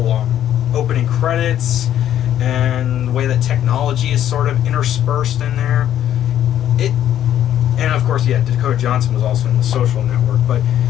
opening credits, and the way that technology is sort of interspersed in there. And of course, yeah, Dakota Johnson was also in The Social Network. But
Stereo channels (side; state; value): right; quieter; 11.1 dB